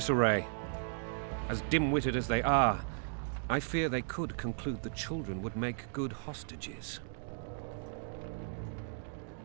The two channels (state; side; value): silent; left; digital silence